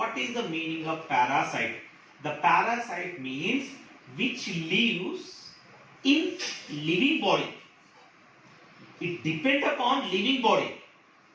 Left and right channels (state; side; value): identical; both; correlation 1.00